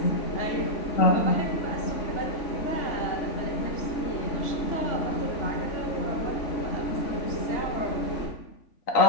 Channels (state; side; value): late; right; 3.5 ms